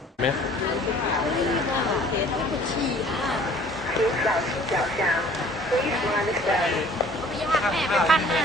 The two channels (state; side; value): normal; both; correlation 0.52